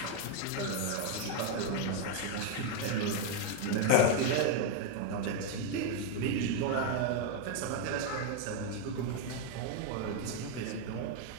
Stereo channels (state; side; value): different; both; correlation 0.01